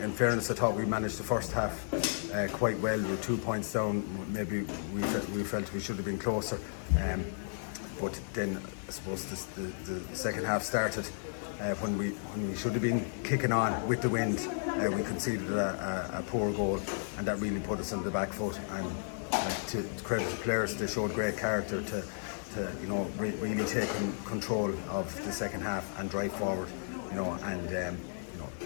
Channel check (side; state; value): right; silent; digital silence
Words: fairness, I thought we managed the first half quite well. We were 2 points down. Maybe we felt we should have been closer. But then I suppose the second half started. When we should have been kicking on with the wind, we conceded a poor goal, and that really put us on the back foot. And to credit the players, they showed great character to really take control of the second half and drive forward. We